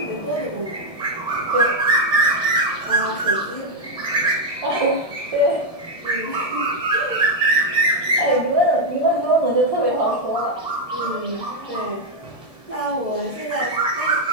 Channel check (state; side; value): late; right; 1.7 ms